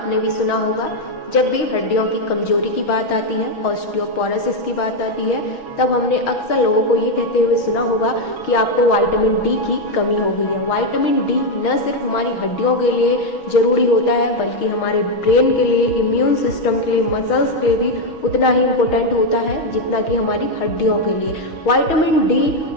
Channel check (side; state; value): right; late; 6.4 ms